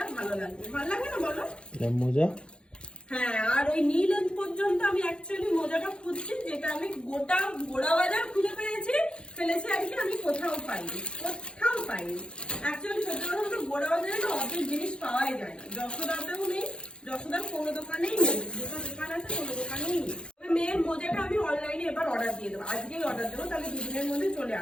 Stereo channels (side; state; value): right; late; 0.055 ms